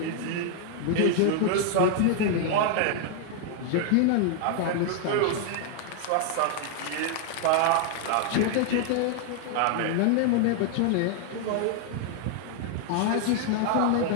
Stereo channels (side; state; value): both; different; correlation 0.00